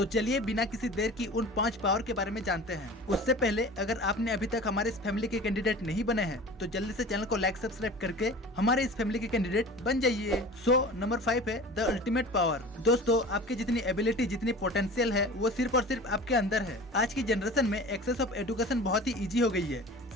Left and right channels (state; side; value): normal; both; correlation 0.39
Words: चलिए बिना किसी देर की उन 5 पावर के बारे में जानते हैं। उससे पहले अगर आपने अभी तक हमारे इस फैमिली के कैंडिडेट नहीं बने हैं तो जल्दी से चैनल को लाइक सब्सक्राइब करके हमारे इस फैमिली के कैंडिडेट बन जाइए। नंबर 5 है द अल्टीमेट पावर। दोस्तों, आपकी जितनी एबिलिटी, जितनी पोटेंशियल है वो सिर्फ और सिर्फ आपके अंदर है। आज की जनरेशन में एक्सेस ऑफ एजुकेशन बहुत ही इजी हो गई है।